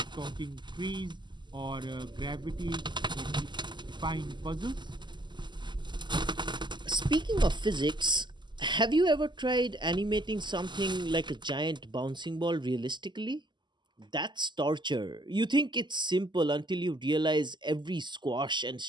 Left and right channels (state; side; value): late; left; 0.22 ms